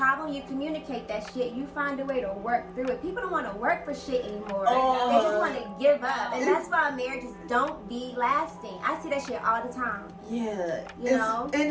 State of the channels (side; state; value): both; identical; correlation 1.00